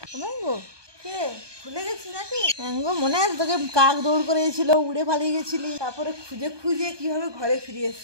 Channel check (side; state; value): left; late; 1.2 ms